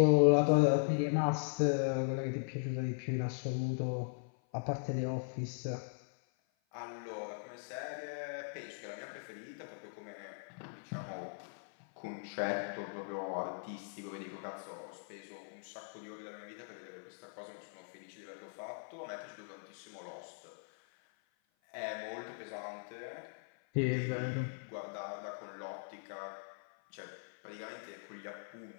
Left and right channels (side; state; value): right; silent; 52 dB below the other